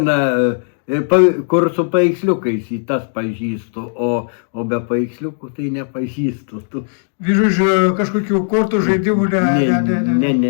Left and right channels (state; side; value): silent; right; digital silence